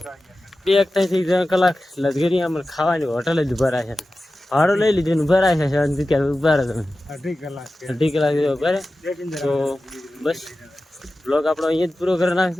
2 થી 3 કલાક લશ્કરી આમ ખાવાની હોટલ જ ઉભા રહ્યા છે. ભાડું લઈ લીધું ઉભા રહ્યા છે શાંતિ ક્યાં ઉભા રહે તમે 2.5 કલાક ઉભા રહે. તો બસ બ્લોગ આપણો અહીંયા જ પૂરો કરી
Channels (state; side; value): normal; both; correlation 0.94